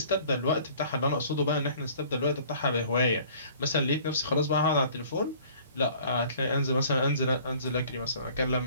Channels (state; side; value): inverted; both; correlation -0.52